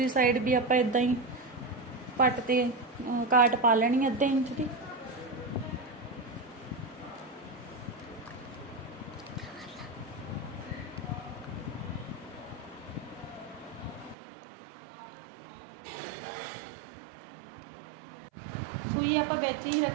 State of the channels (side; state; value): left; drops out; at 14.2 s